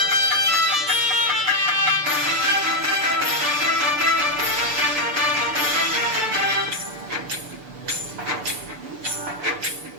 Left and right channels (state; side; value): late; left; 6.8 ms